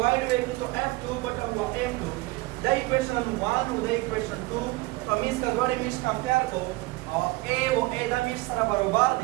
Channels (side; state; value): left; quieter; 21.7 dB